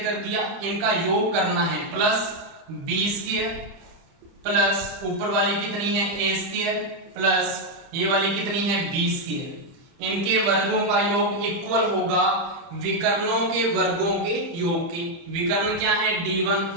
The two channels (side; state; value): left; late; 30 ms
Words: कर दिया, इनका योग करना है, प्लस B स्क्वायर, प्लस ऊपर वाली कितनी है A स्क्वायर, प्लस ये वाली कितनी है B स्क्वायर। इनके वर्गों का योग इक्वल होगा विकर्णों के वर्गों के योग के। विकर्ण क्या है,